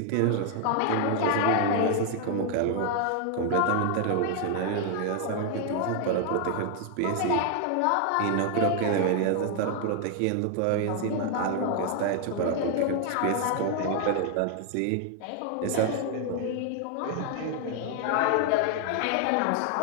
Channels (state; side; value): different; both; correlation 0.00